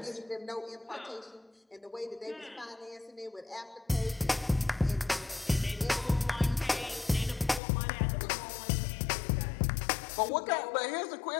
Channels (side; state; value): right; drops out; at 7.6 s